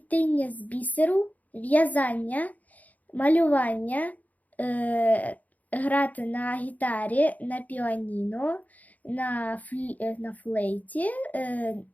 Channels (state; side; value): late; right; 0.077 ms